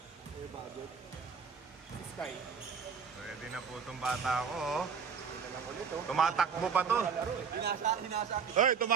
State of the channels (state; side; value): quieter; left; 6.4 dB